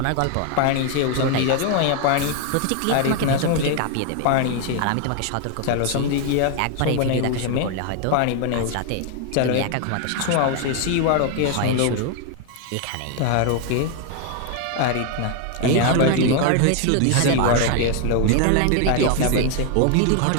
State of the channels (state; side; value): different; both; correlation 0.00